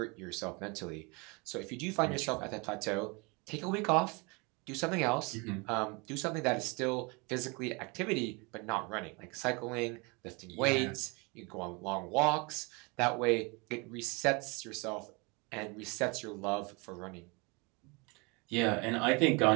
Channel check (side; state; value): left; quieter; 28.9 dB